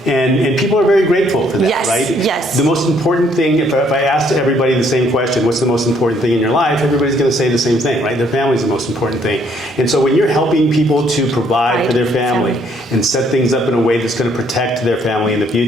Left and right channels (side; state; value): both; normal; correlation 0.66